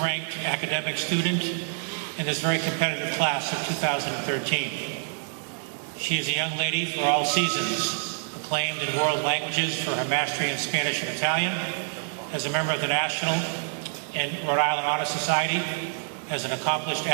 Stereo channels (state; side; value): silent; left; digital silence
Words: academic student in this very competitive class of 2013. She is a young lady for all seasons, acclaimed in world languages for her mastery in Spanish and Italian, as a member of the National and Rhode Island Honor Society, as an accomplished